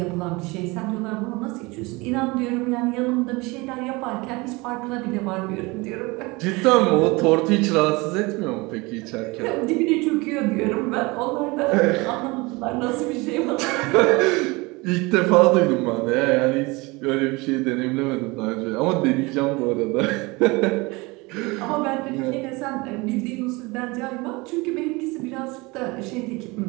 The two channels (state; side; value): quieter; left; 24.5 dB